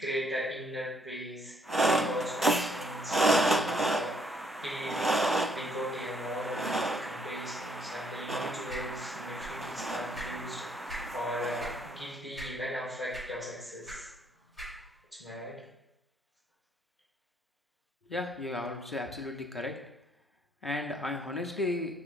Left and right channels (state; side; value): normal; both; correlation 0.68